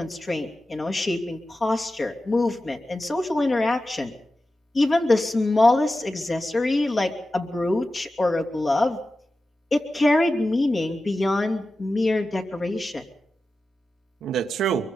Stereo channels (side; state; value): both; normal; correlation 0.93